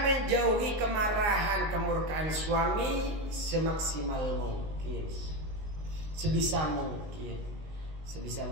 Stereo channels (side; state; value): left; late; 19 ms